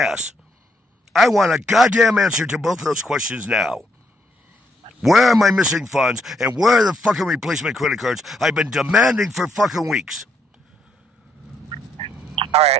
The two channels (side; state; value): both; normal; correlation 0.73